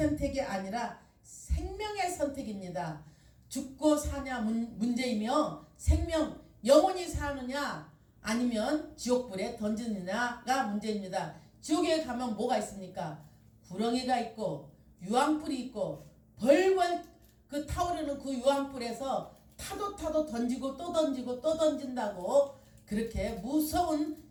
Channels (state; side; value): identical; both; correlation 1.00